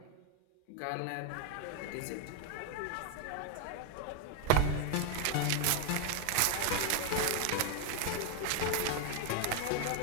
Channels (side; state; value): both; different; correlation 0.01